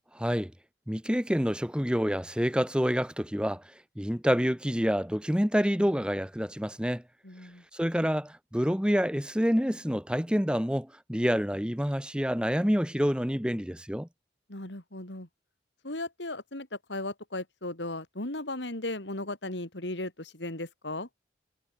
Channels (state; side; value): normal; both; correlation 0.91